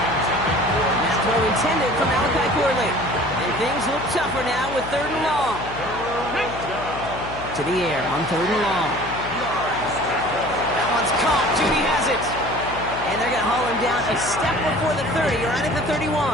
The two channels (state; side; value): noise; left; hum, 11 dB below the sound